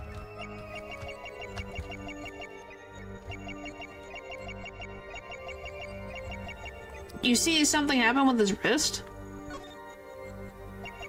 You see something happen with his wrist?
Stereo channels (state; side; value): identical; both; correlation 1.00